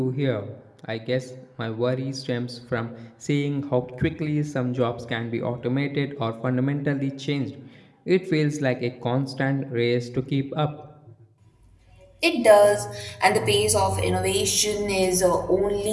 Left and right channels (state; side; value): identical; both; correlation 1.00